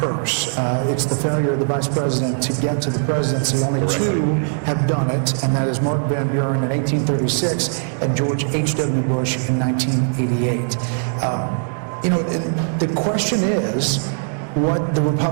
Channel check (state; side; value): silent; left; 66 dB below the other